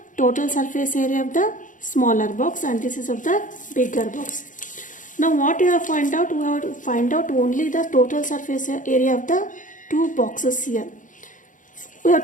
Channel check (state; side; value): late; right; 0.38 ms